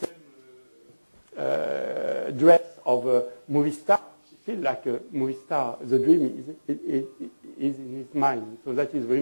dress of a movie star, she feels like a movie star. The dream is in his mind. So that is very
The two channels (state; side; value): inverted; both; correlation -1.00